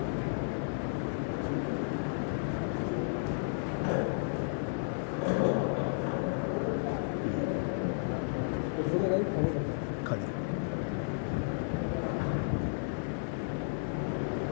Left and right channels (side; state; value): right; silent; 56 dB below the other